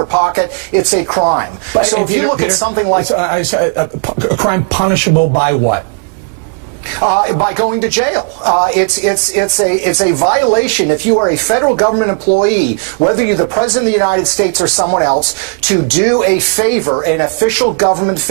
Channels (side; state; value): left; quieter; 37.5 dB